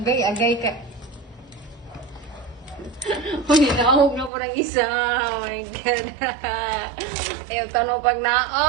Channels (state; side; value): drops out; left; at 4.3 s